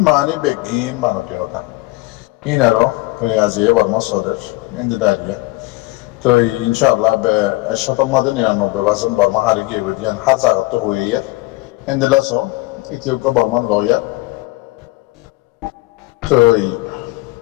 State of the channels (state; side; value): quieter; right; 21.6 dB